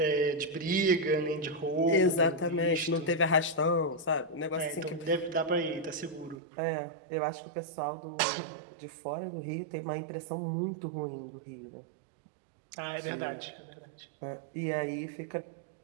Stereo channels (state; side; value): drops out; left; at 6.4 s